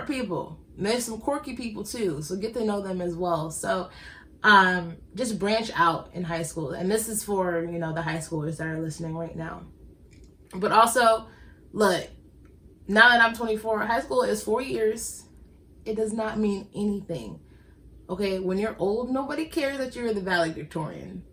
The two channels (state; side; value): identical; both; correlation 1.00